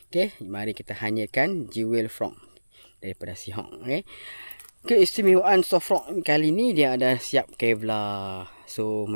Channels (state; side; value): inverted; both; correlation -1.00